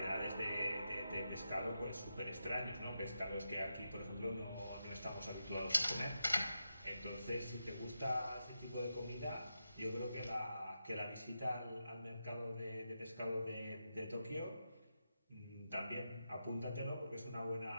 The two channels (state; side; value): inverted; both; correlation -0.87